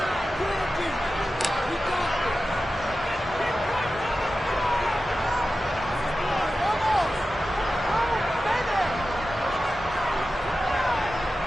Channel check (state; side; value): normal; both; correlation 0.93